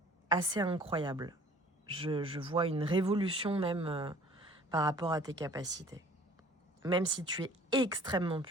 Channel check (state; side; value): normal; both; correlation 0.51